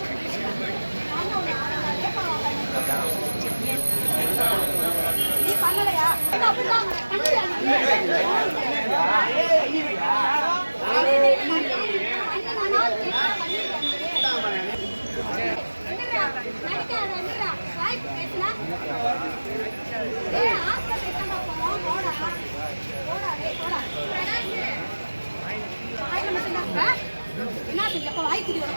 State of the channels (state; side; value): inverted; both; correlation -1.00